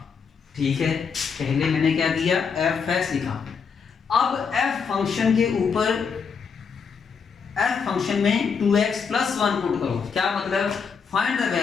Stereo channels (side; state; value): right; quieter; 6.0 dB